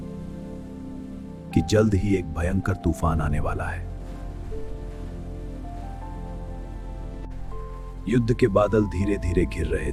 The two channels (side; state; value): both; identical; correlation 1.00